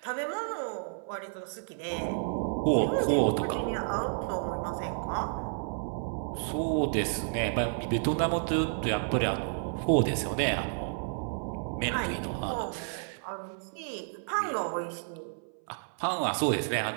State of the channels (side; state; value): left; silent; 56 dB below the other